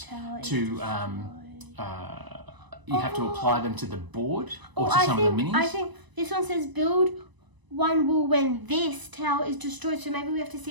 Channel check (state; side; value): late; left; 1.0 ms